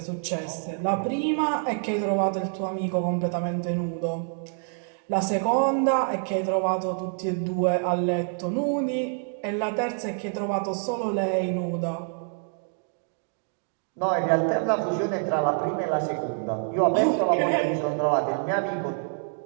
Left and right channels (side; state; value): left; silent; 60 dB below the other